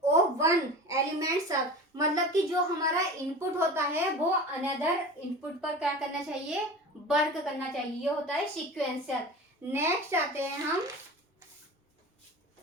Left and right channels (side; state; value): both; normal; correlation 0.34